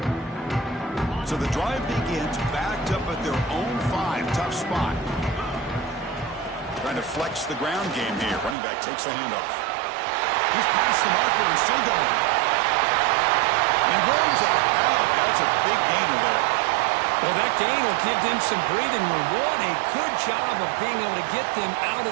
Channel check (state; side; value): drops out; left; at 8.6 s